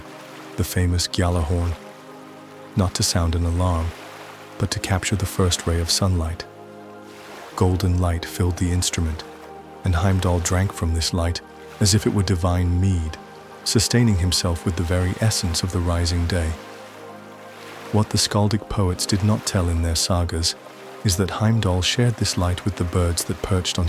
the famous Gjala horn, not to sound an alarm, but to capture the first ray of sunlight. Golden light filled the instrument, and Heimdall drank from this light as if it were divine mead, sustaining himself with the very essence of the rising day. What the skaldic poets did not tell in their sagas is that Heimdall shared this light with the birds that perched on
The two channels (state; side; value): identical; both; correlation 1.00